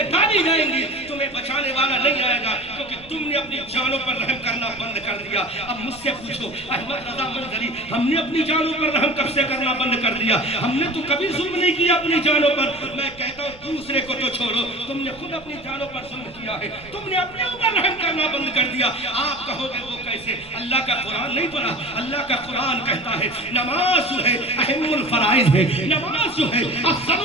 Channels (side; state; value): right; noise; rumble, 22 dB below the sound